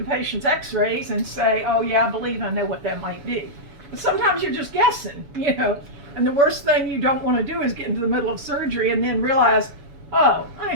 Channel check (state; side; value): late; left; 7.1 ms